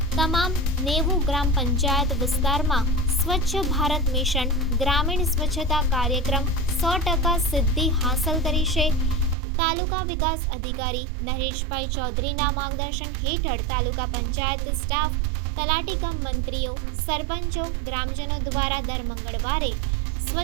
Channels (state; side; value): drops out; left; at 9.3 s